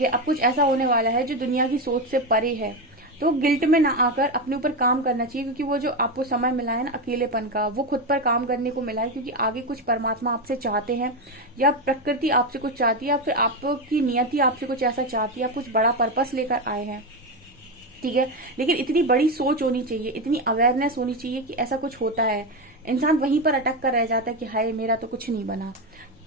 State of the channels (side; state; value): both; normal; correlation 0.12